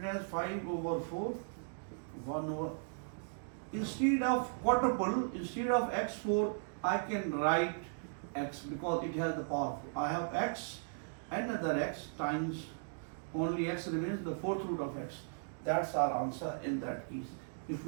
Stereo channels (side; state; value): left; silent; digital silence